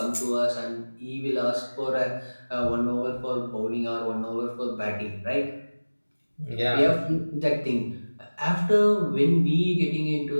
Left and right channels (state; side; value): inverted; both; correlation -1.00